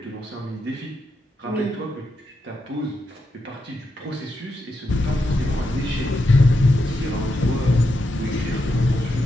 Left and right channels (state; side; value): normal; both; correlation 0.84